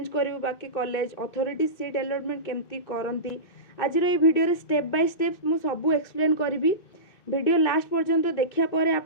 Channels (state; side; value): late; right; 2.6 ms